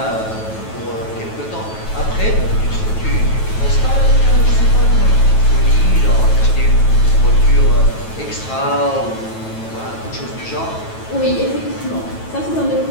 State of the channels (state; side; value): late; right; 9.2 ms